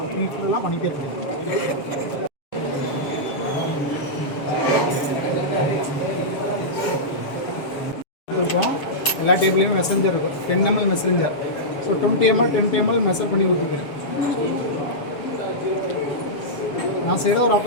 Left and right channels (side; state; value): right; late; 7.2 ms